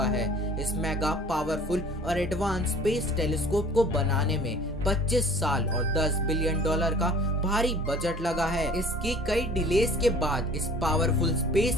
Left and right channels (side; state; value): both; normal; correlation 0.48